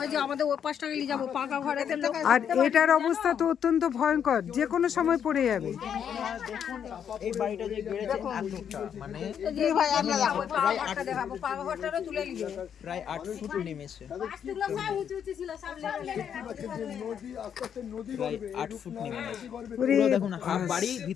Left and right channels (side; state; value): right; quieter; 8.4 dB